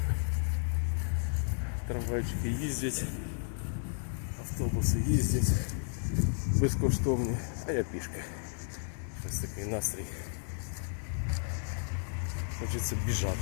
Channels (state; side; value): silent; right; 56 dB below the other